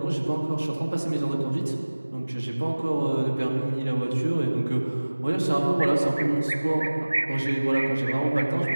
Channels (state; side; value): inverted; both; correlation -1.00